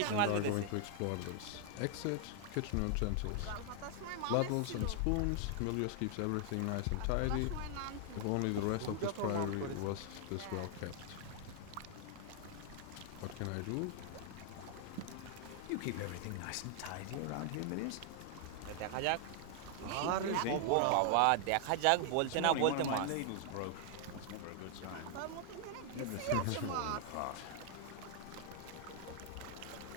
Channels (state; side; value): different; both; correlation 0.00